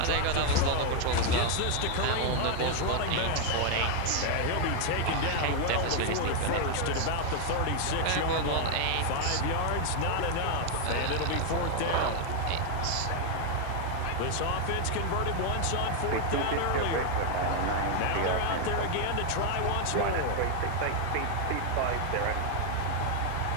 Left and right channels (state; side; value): different; both; correlation 0.01